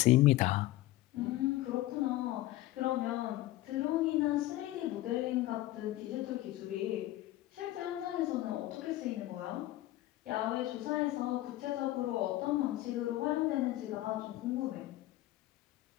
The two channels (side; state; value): right; quieter; 16.0 dB